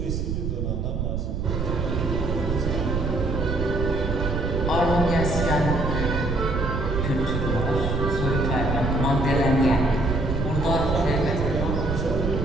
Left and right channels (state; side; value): noise; right; rumble, 1 dB below the sound